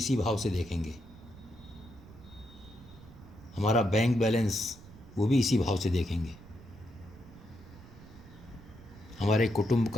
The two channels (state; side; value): noise; right; rumble, 19 dB below the sound